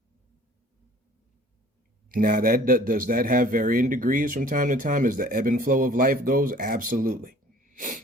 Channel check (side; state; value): both; normal; correlation 0.51